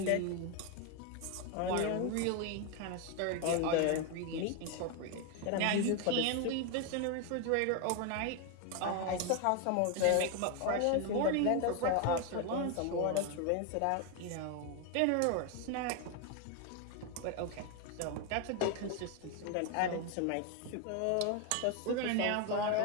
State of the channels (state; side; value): different; both; correlation 0.01